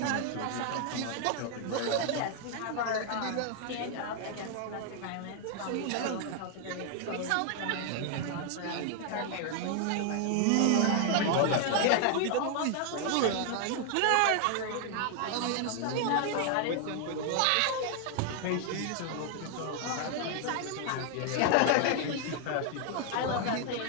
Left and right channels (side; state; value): both; different; correlation 0.00